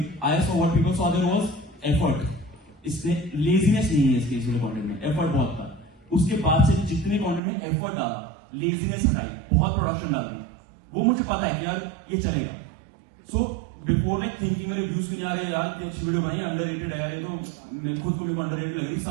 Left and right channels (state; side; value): drops out; left; at 7.4 s